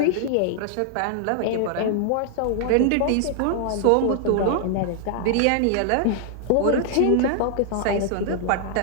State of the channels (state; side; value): different; both; correlation 0.00